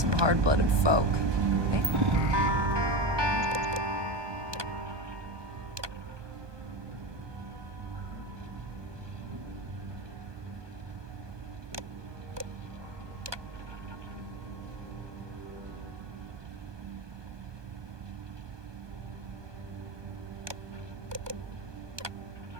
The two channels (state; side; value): late; left; 1.2 ms